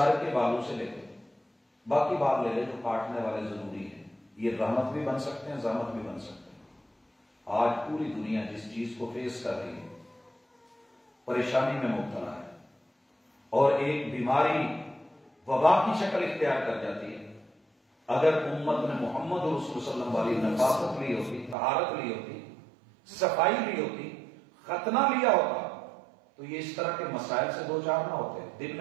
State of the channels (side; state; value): left; drops out; at 21.6 s